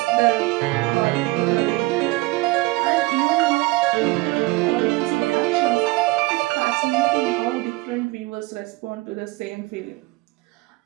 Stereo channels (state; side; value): quieter; left; 21.7 dB